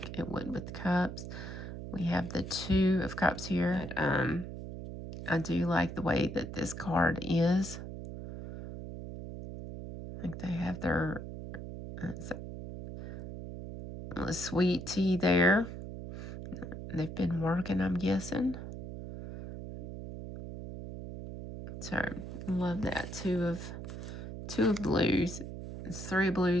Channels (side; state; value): right; noise; hum, 9 dB below the sound